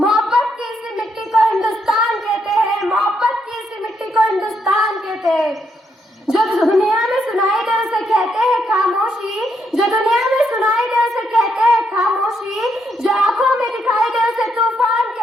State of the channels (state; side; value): normal; both; correlation 0.77